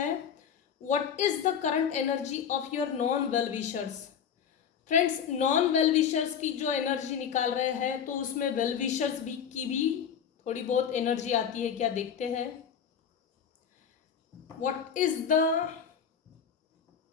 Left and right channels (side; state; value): right; quieter; 7.7 dB